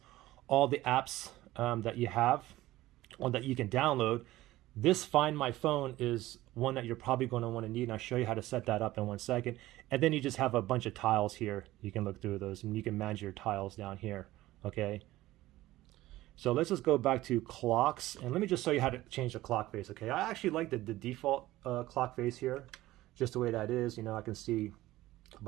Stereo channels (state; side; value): quieter; left; 16.6 dB